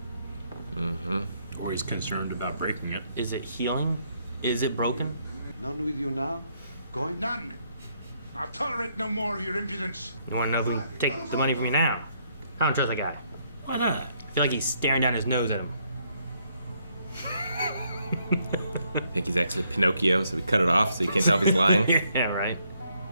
Mm-hmm. Or he's concerned about breaking it. Is it healing? Is it broken? None with you now? Going? None. I'll tolerate no more of your impudence. You want to know if we can take the money from you now? I don't trust that guy. Why not? I feel like he's staring down his nose at him. I think he's actually Pinocchio, so we cut it off so you can't tell if he's lying. Yeah, right.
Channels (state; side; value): inverted; both; correlation -0.72